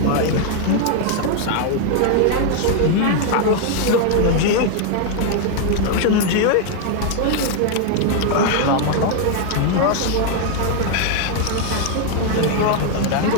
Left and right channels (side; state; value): both; different; correlation 0.00